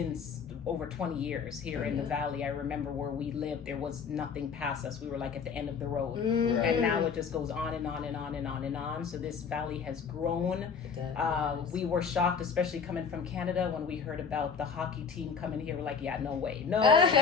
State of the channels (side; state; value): right; quieter; 6.0 dB